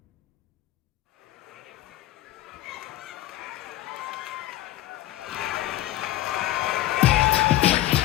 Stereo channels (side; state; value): right; quieter; 15.0 dB